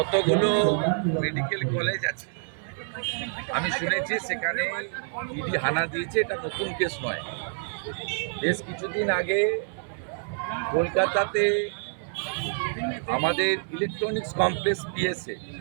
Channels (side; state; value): left; silent; 60 dB below the other